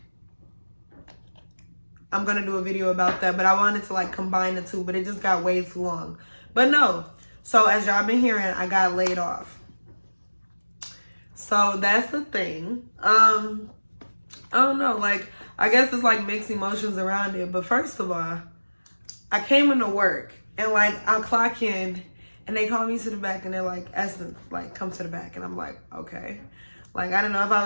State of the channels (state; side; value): inverted; both; correlation -1.00